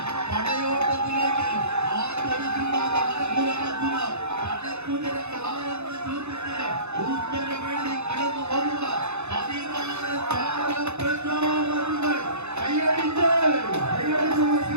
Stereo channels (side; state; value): left; late; 0.81 ms